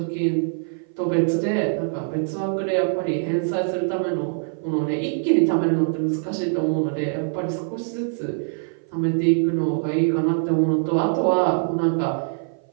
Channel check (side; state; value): left; silent; 57 dB below the other